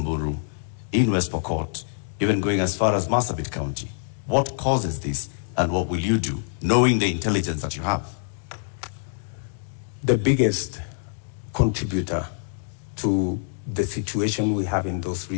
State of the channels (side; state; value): right; silent; digital silence